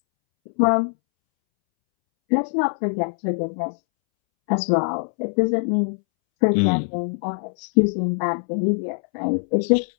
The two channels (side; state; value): right; silent; 64 dB below the other